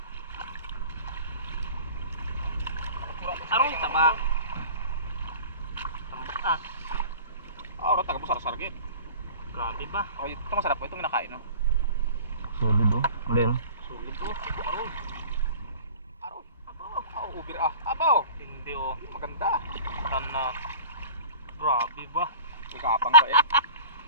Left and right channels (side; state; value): both; inverted; correlation -0.42